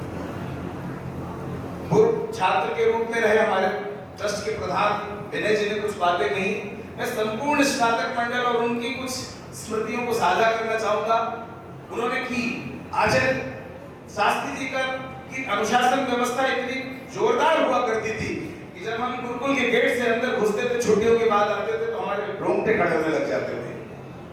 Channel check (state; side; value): identical; both; correlation 1.00